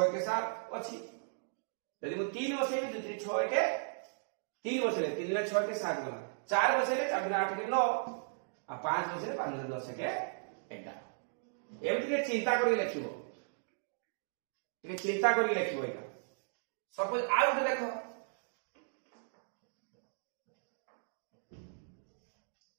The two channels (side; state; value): left; silent; digital silence